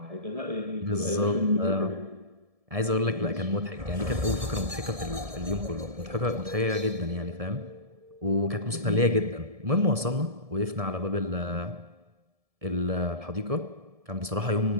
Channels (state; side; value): late; left; 1.7 ms